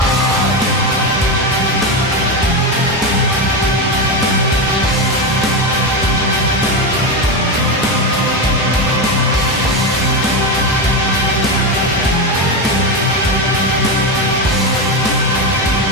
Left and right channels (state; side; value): normal; both; correlation 0.13